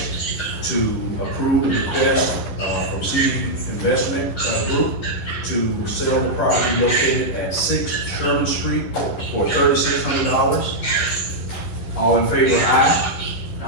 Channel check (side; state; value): right; late; 11 ms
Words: to approve the request, from CD Investment, Group to sell the property located at 6 Sherman Street for $3,600. All in favor, aye.